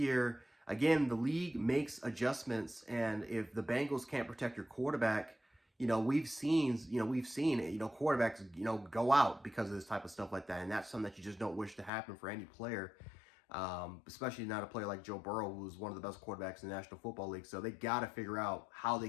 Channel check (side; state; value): right; drops out; at 11.9 s